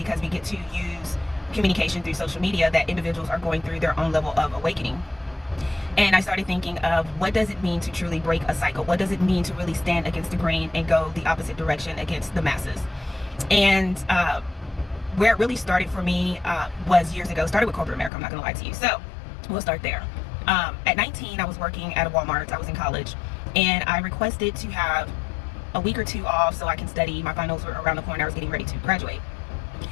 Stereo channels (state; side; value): drops out; right; at 18.1 s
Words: we get to use communication through social media, that individuals are going through their own level of awakening. And I started thinking of, what does it mean to truly break a cycle? What does it mean to really stand against the grain and go the opposite direction against the masses? And where it really started for me was years ago. Started with corporate America, I'm not gonna lie to you. So we'll start there. At 19, I was working at a Walmart. I was in college, and I requested to have a week or two off so I can study. My finals were around the corner. I was getting ready to graduate,